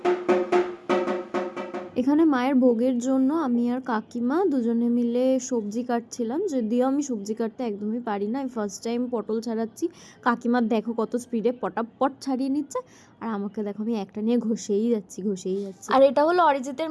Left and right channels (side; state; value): both; identical; correlation 1.00